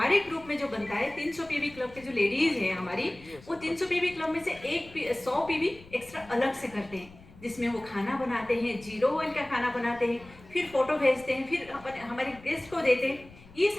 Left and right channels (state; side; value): noise; left; rumble, 22 dB below the sound